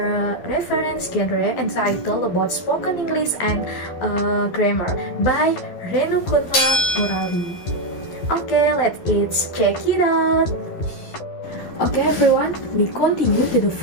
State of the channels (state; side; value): late; right; 12 ms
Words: reference genre entitled about spoken English and grammar by Renukuntla Murali. Okay, let's check it out. Okay everyone, we continue to the